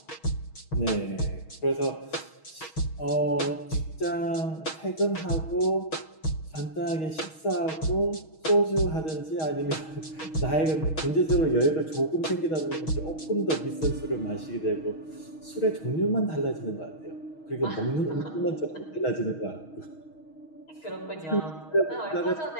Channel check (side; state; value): right; late; 6.3 ms